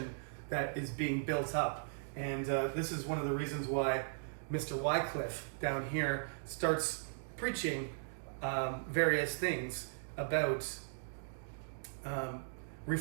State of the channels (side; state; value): left; silent; digital silence